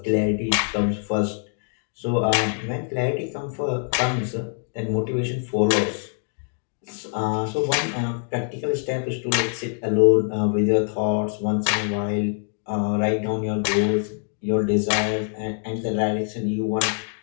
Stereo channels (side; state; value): right; silent; 60 dB below the other